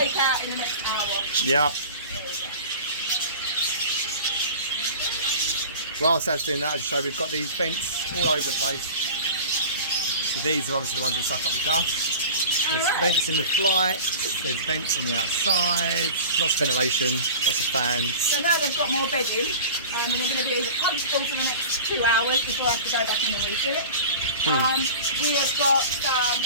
out in the next hour. Yeah. There we go. Whilst that's doing that, I'll show we've got these vents all over the place. So these are obviously the ones that suck up the dust. There's vents in the flight, there's vents on the outside, lots of ventilation, lots of fans. So now they've got more bedding, and they're going to be comfortable for the next 2 hours before I have to go back in and refill it. We have got some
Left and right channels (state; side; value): inverted; both; correlation -0.36